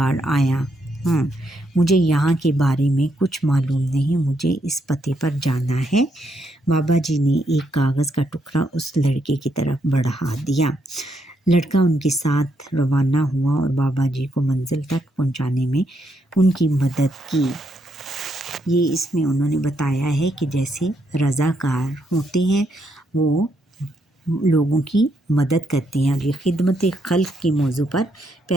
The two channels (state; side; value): normal; both; correlation 0.77